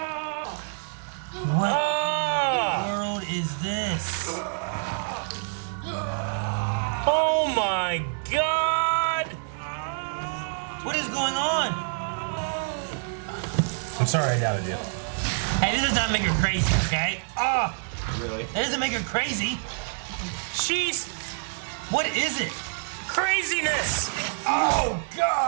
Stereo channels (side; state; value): left; silent; digital silence